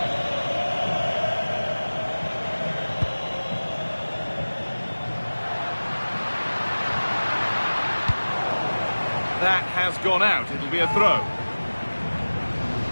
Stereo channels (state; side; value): inverted; both; correlation -1.00